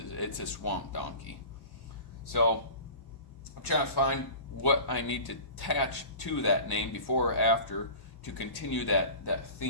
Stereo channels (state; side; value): late; right; 1.1 ms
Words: a Swamp Donkey. So I'm trying to find what I need to attach to that name before or after to continue that